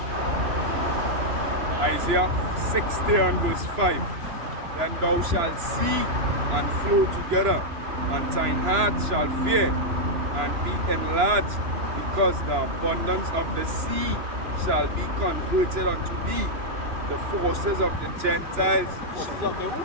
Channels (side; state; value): left; late; 2.9 ms